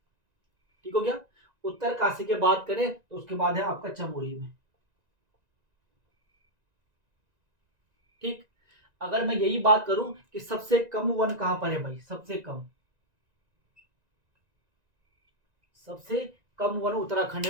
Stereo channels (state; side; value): late; left; 1.9 ms